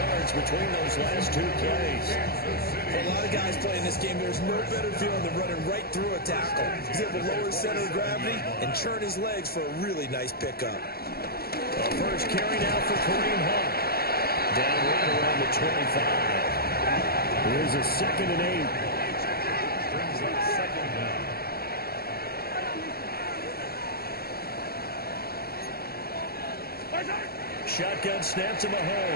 difference between those last two plays. For a lot of guys playing this game, there's no better feeling than running right through a tackle. He's able to lower his center of gravity and churn his legs for a really nice pickup. The first carry now for Kareem Hunt. Down right around the 25. Here's a 2nd and 8. Brings up 2nd down. Shotgun snap to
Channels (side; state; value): right; late; 0.45 ms